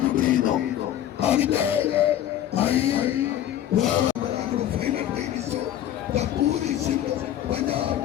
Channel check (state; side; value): quieter; right; 11.5 dB